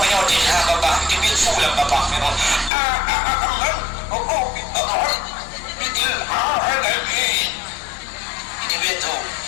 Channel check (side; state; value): right; drops out; at 2.7 s